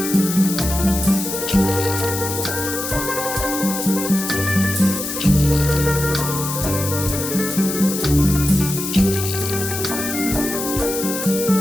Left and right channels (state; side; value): noise; left; hiss, 5 dB below the sound